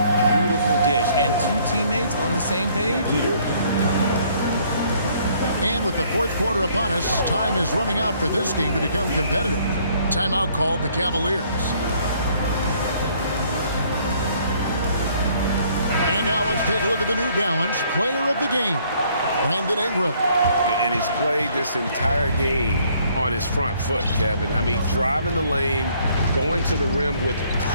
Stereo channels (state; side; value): inverted; both; correlation -0.63